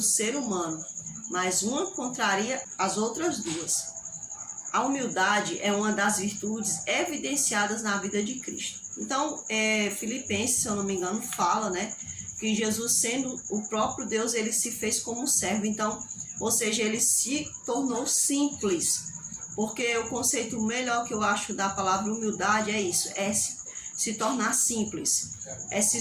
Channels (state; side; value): identical; both; correlation 1.00